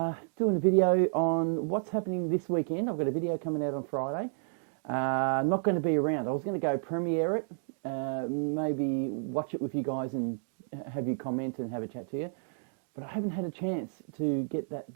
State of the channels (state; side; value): silent; left; digital silence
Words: doing a video on what's happening this weekend. I've got a video coming out on Friday. Not going to be around. I was going to go premiere it, maybe watch it with you guys and have you comment and have a chat to you. But I haven't had a chance to get that